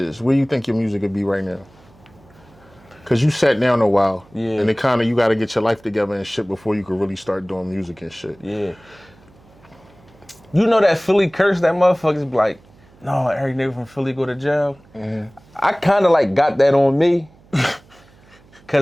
where you think your music would be right now? Because you sat down a while, and it kind of, you got to get your life together and shit before you could really start doing music and shit. Yeah. You know that Philly curse, that motherfuckers be like, no, every nigga from Philly go to jail. I kind of like got that on me.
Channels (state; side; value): noise; right; hum, 27 dB below the sound